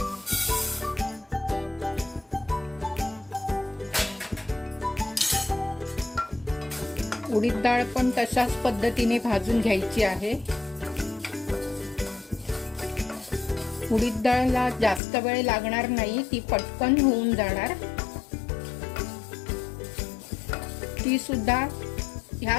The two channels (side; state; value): right; drops out; at 15.0 s